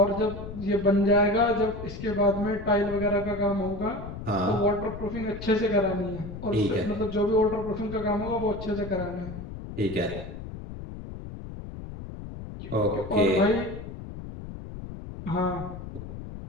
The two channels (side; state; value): left; noise; rumble, 10 dB below the sound